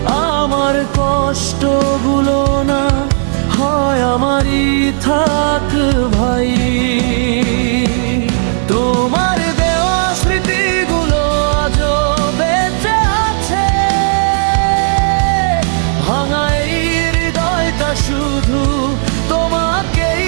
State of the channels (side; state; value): left; silent; digital silence